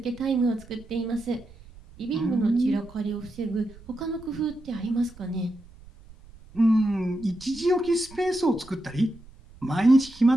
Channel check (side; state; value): right; noise; rumble, 22 dB below the sound